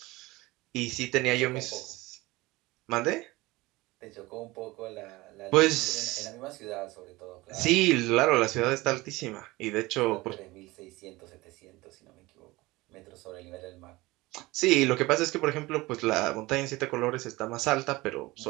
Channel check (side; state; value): left; quieter; 20.8 dB